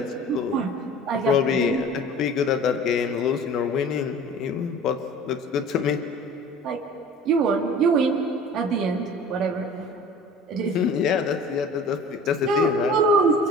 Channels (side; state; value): both; normal; correlation 0.43